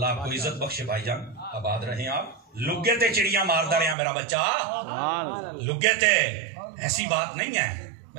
آپ کو عزت بخشے بھائی جان، آباد رہیں آپ۔ لگے تے چڑیاں ماردا رہا میرا بچہ، لگے تے، ایسی بات نہیں ہے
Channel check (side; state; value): left; drops out; at 4.0 s